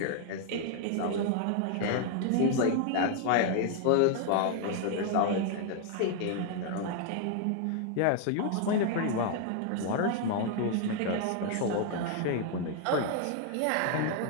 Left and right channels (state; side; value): different; both; correlation 0.00